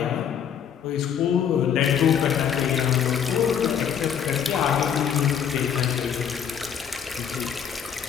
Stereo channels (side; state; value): right; quieter; 8.3 dB